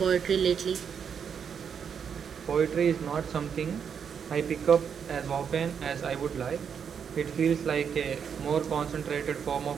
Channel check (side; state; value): left; quieter; 7.2 dB